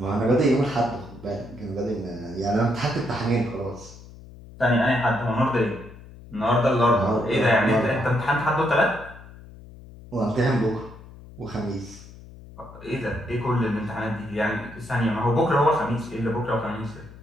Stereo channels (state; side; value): noise; left; hum, 18 dB below the sound